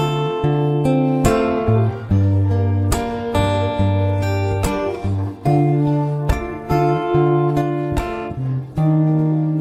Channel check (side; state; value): both; identical; correlation 1.00